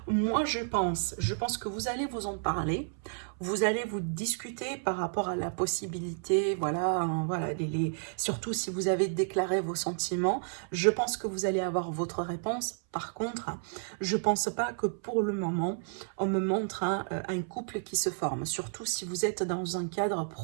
moi je pense que vous allez vous en parler. Vous allez vous discuter par rapport à la possibilité, voilà, hein, voilà, surtout si vous avez déclaré vos sentiments, je pense que vous allez avoir votre réponse. Par contre, je pense pas que pour le moment, on me montre un couple qui se forme, surtout si vous êtes dans un cadre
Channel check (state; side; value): silent; left; 57 dB below the other